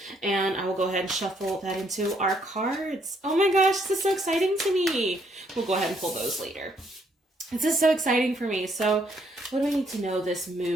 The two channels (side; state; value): both; normal; correlation 0.70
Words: And I will go ahead and shuffle that into our cards. Oh my gosh, this is so exciting to me. We'll go ahead and pull those later. This is so exciting for me. So what do I need to know this